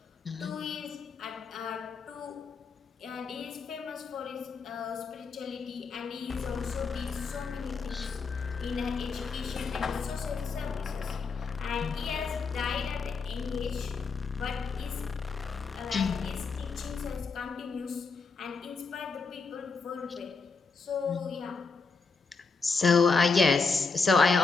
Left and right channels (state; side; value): quieter; right; 4.6 dB